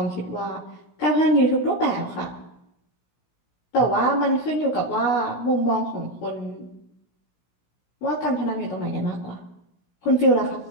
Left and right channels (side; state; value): right; late; 17 ms